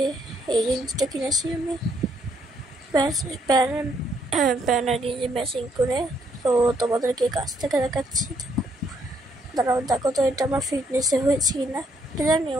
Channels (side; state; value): both; normal; correlation 0.71